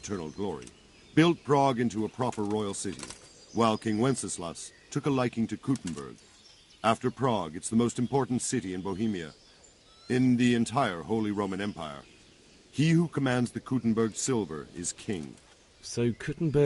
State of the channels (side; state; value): both; identical; correlation 1.00